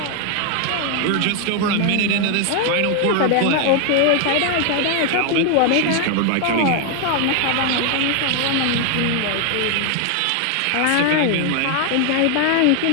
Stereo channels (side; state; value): both; different; correlation 0.00